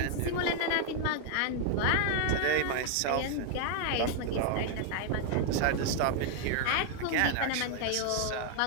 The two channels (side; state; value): both; different; correlation 0.00